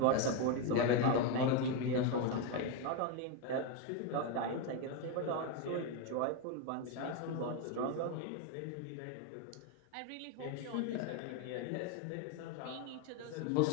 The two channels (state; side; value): different; both; correlation 0.02